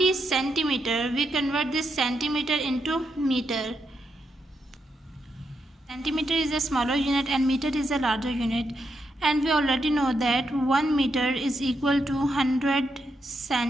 centimeter. We convert this centimeter into meter. Centimeter is a smaller unit and meter is a larger unit. And we already know that 1 meter is equal to 100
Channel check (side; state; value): both; normal; correlation 0.82